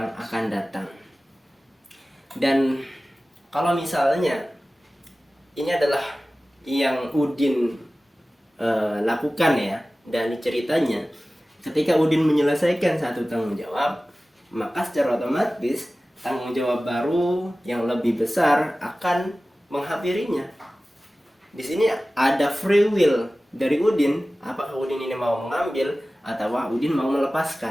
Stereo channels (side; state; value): both; normal; correlation 0.97